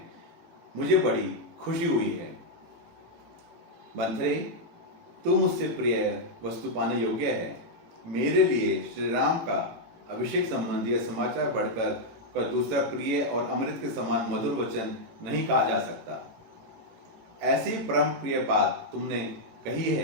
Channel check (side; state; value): left; late; 18 ms